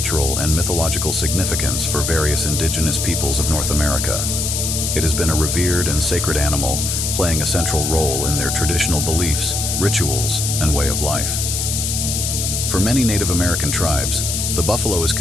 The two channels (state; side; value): noise; left; hiss, 1 dB below the sound